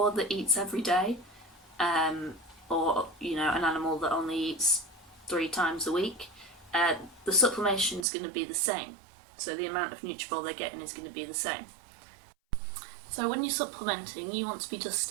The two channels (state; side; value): drops out; left; at 8.1 s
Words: that eats every day, or an animal that only eats 3 times a week, the supplementation is going to be the same. So the amount of Nutritional they're getting is going to be the same. So when you're supplementing, you want to be